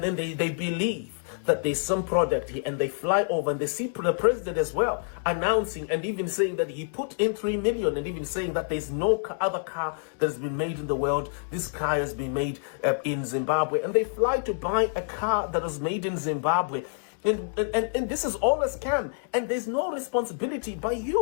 then they believe that there's some product here, and they fly over and they see the president as well announcing and even saying that he put in 3 million, and even saying that there's no other car that has been made in the world. This car has been made in Zimbabwe, and they fly to buy a car that was made in Zimbabwe. And this is all a scam, and there's no responsibility by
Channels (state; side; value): silent; right; digital silence